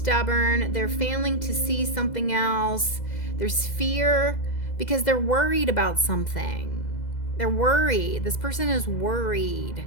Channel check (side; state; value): right; late; 2.0 ms